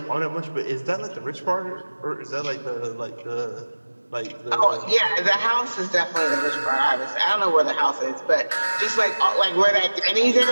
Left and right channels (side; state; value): both; inverted; correlation -1.00